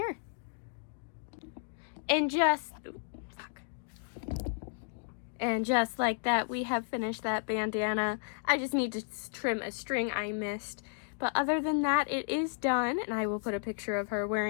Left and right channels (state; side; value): silent; right; digital silence